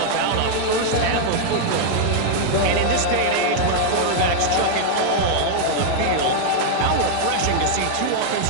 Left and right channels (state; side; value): different; both; correlation -0.01